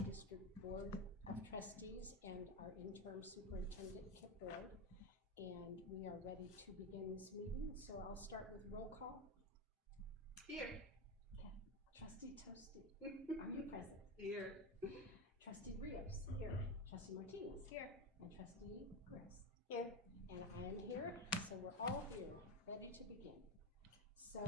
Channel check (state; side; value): normal; both; correlation 0.15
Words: District Board of Trustees and our interim superintendent, Kip Ward, and we are ready to begin this meeting. So I'll start with roll call. Here. Okay. Trustee Toasty, are you present? Here. Trustee Rios, here. Trustee Martinez, here. And Trustee Chris, here. And I am here, so we're all here, ready to begin. So